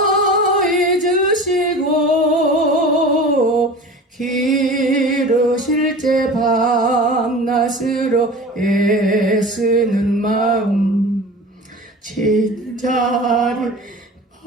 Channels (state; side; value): normal; both; correlation 0.36